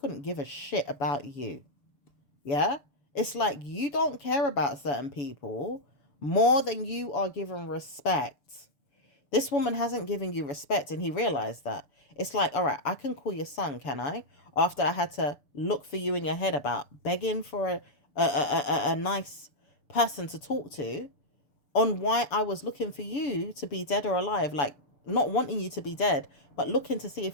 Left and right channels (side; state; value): right; late; 7.1 ms